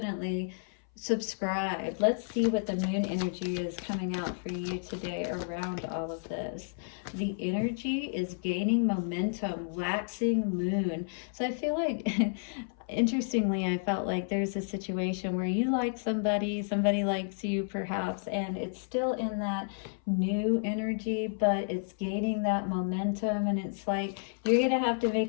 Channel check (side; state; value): right; silent; 57 dB below the other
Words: subscribe. Let's see what the moon energy is coming out for you today around all of this. The energy is gaining momentum, waxing moon. So I feel like interestingly, I felt like there's a situation where you like somebody, somebody likes you perhaps, and it's still in that new energy, but it's gaining that momentum, and it's like you're gonna have to